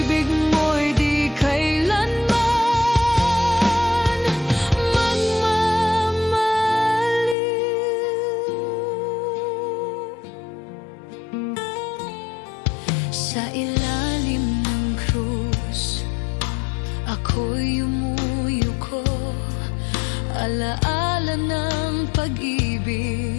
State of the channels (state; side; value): drops out; right; at 7.4 s